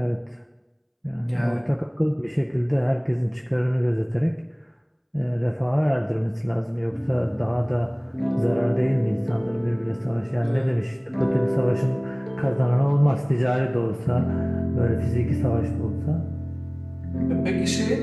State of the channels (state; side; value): identical; both; correlation 1.00